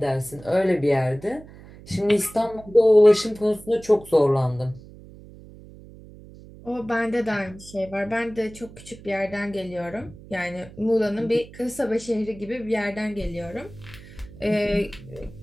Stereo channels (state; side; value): noise; right; hum, 19 dB below the sound